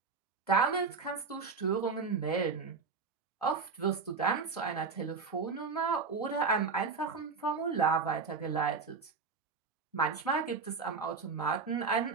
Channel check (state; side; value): quieter; left; 4.9 dB